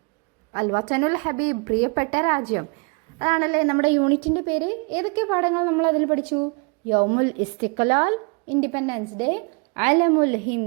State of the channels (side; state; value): left; quieter; 33.6 dB